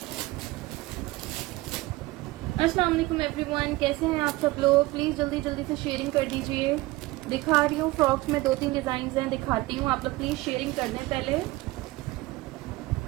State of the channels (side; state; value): left; quieter; 20.0 dB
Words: अस्सलाम वालेकुम एवरीवन, कैसे हैं आप सब लोग? प्लीज जल्दी जल्दी से शेयरिंग कर दीजिए। दिखा रही हूँ फ्रॉक्स में 2-3 डिजाइन हैं, दिखाती हूँ। आप लोग प्लीज शेयरिंग कर दें पहले।